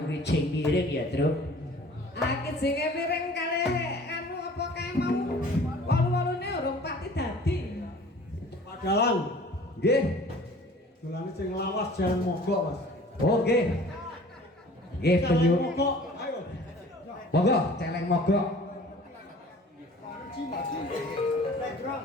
wijing miring ya, Truk. Aki jenenge miring kali anu apa kae mau walu-walune urung pati dadi. Pak Dalang. Nggih. Dolane sing lawas jalan mogok, Mas. Oh, nggih. Nggih, penyu. Mogok, ayo. Monggo, celeng mogok.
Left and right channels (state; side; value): normal; both; correlation 0.48